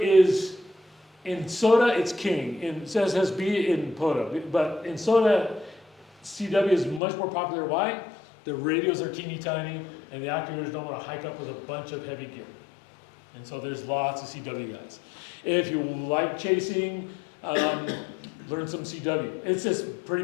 in SOTA, it's king. In SSB, in POTA. But in SOTA, CW is much more popular. Why? The radios are teeny tiny, and the activators don't want to hike up with a bunch of heavy gear. And so there's lots of CW guys. If you like chasing, learn some CW. It's just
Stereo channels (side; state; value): right; drops out; at 7.0 s